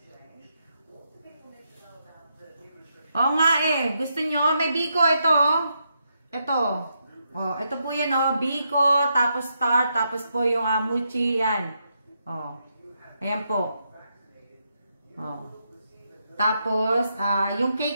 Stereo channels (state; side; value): inverted; both; correlation -0.81